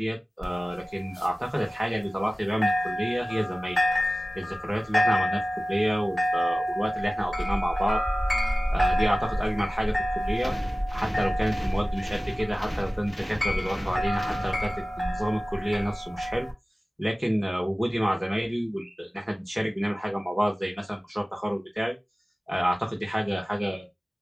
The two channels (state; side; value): normal; both; correlation 0.97